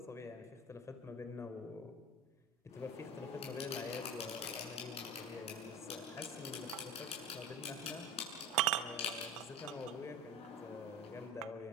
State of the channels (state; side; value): normal; both; correlation 0.35